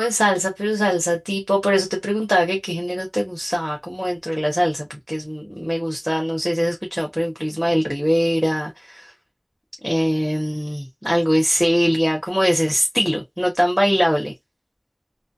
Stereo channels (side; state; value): both; identical; correlation 1.00